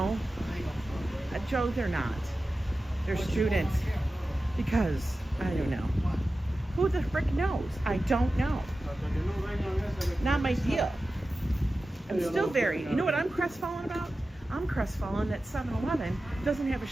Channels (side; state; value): both; normal; correlation 0.94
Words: Joe, they're not. They're students. Because, I don't know. Who the frick knows? I don't know. Not my deal. I'm still very, you know what I'm crestfallen about? I'm crestfallen that 7-Eleven doesn't have a